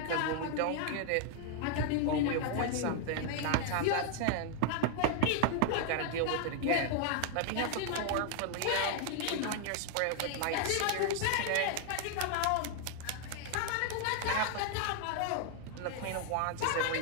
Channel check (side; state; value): both; different; correlation 0.00